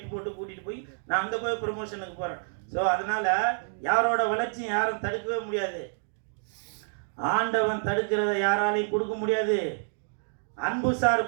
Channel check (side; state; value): left; silent; digital silence